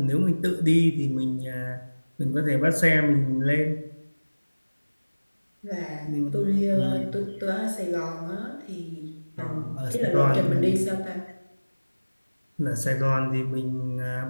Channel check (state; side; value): inverted; both; correlation -1.00